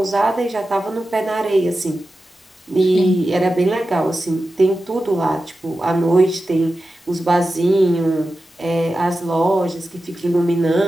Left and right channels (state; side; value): normal; both; correlation 0.92